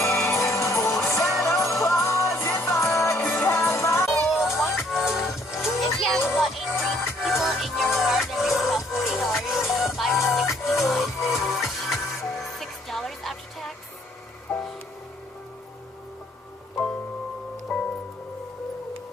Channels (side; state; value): both; normal; correlation 0.64